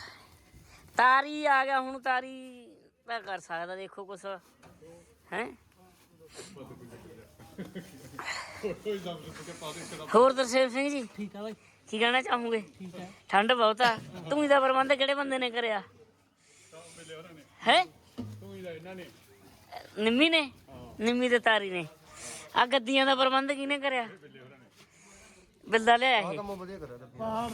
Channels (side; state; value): both; identical; correlation 1.00